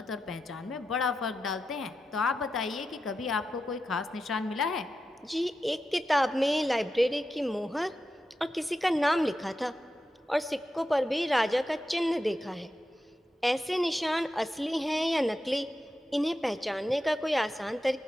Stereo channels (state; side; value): normal; both; correlation 0.89